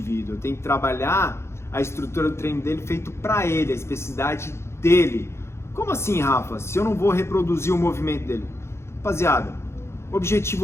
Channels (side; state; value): right; late; 0.13 ms